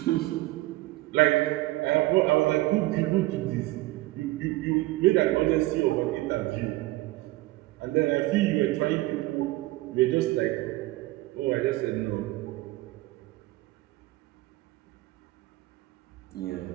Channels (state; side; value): quieter; left; 18.9 dB